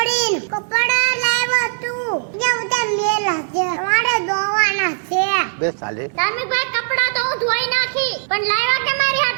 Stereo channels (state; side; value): silent; left; digital silence